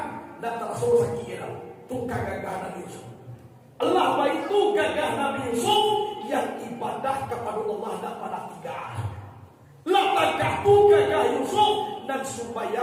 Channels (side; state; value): both; identical; correlation 1.00